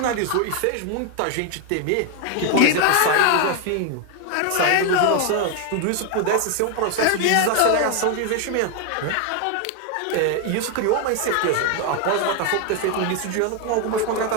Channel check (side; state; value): both; different; correlation 0.01